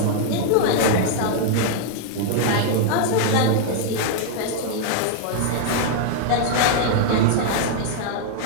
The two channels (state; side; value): different; both; correlation 0.00